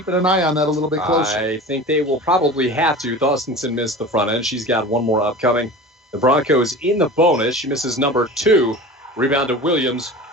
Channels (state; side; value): normal; both; correlation 0.35